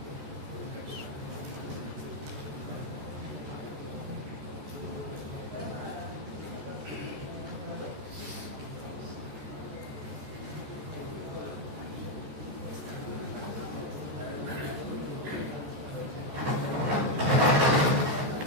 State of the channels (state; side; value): late; left; 14 ms